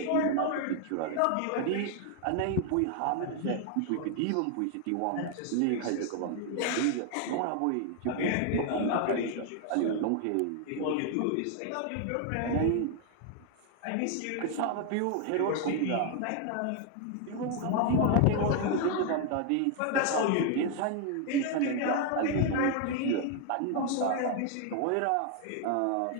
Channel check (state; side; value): different; both; correlation 0.00